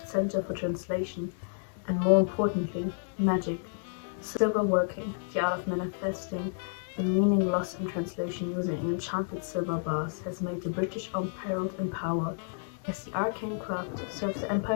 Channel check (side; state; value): right; silent; 57 dB below the other